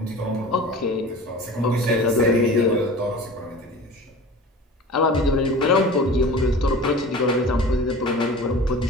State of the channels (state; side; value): normal; both; correlation 0.38